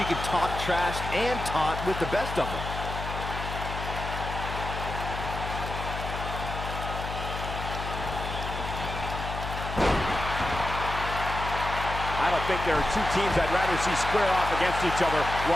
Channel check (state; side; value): noise; left; hum, 6 dB below the sound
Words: can talk trash and taunt with the best of them. I don't think there are two teams I'd rather see square off against each other